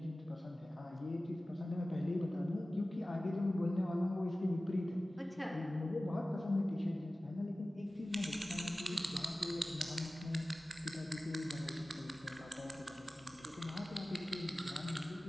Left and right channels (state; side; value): normal; both; correlation 0.97